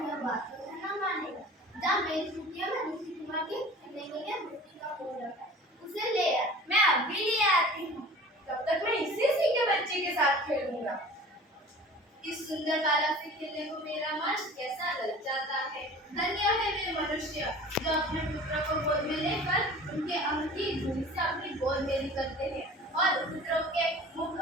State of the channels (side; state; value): both; normal; correlation 0.42